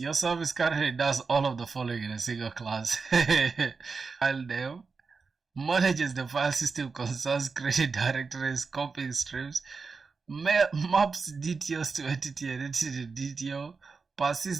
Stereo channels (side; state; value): left; quieter; 4.8 dB